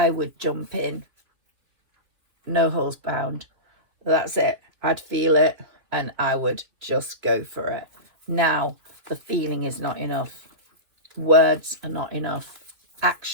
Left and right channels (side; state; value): left; late; 2.9 ms